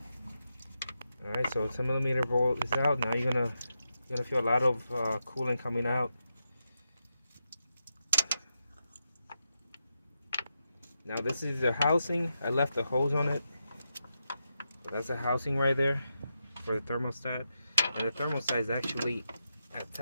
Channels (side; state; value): both; inverted; correlation -0.86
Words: Alright, so 10mm bolt is out. Now you're gonna feel a lot of coolant coming out. Now this is the housing. I left the hose on it. So that's the housing right there for the thermostat. And the thermostat is actually